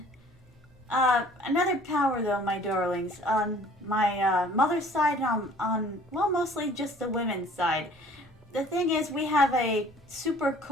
Another power, though, my darlings. On my mother's side and well, mostly just the women's side. The thing is, we have a super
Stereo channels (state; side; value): normal; both; correlation 0.52